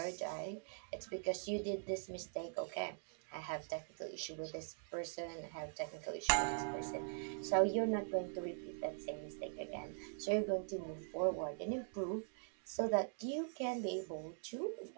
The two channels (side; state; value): left; silent; digital silence